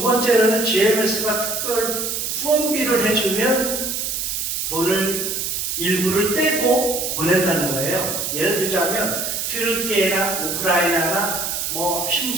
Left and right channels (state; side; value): noise; right; hiss, 2 dB below the sound